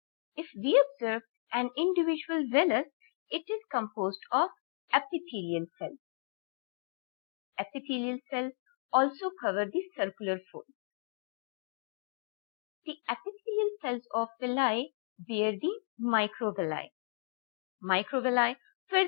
If we observe an individual villus, it is composed of epithelial cells. Epithelial cells also cover the circular folds. The epithelial cells of villi bear the microvilli. Microvilli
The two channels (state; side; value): silent; right; 55 dB below the other